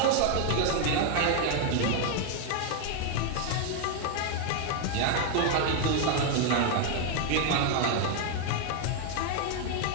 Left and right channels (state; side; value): different; both; correlation 0.00